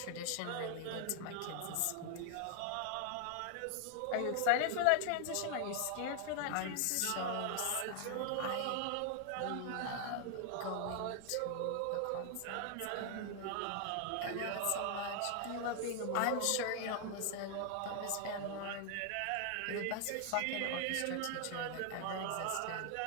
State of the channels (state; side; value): different; both; correlation 0.00